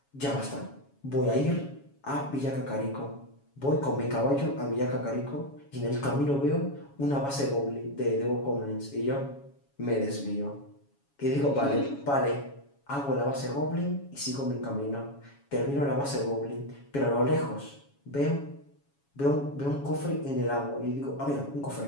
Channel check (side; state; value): right; late; 7.2 ms